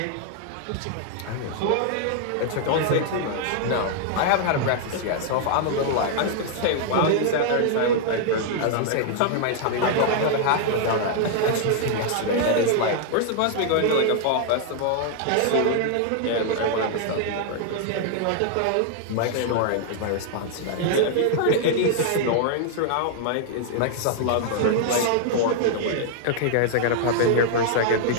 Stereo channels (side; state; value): both; different; correlation 0.00